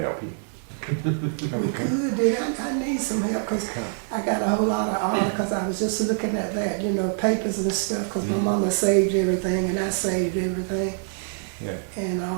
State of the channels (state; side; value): silent; left; 62 dB below the other